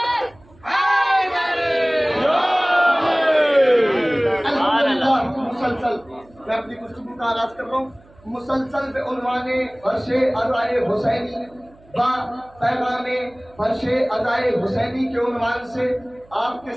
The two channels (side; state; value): right; noise; hum, 28 dB below the sound